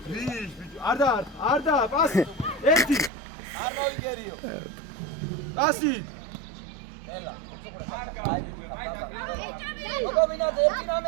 არ და პასი ერთი არ მოგერიო პასი ელა გოგობინაზე ერთი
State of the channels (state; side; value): drops out; left; at 3.1 s